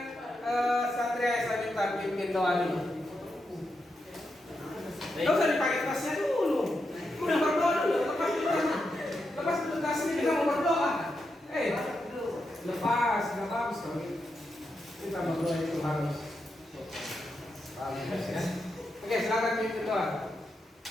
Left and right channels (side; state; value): both; normal; correlation 0.85